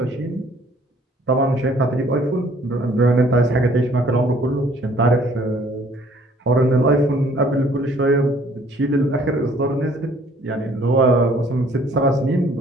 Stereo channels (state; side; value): normal; both; correlation 0.58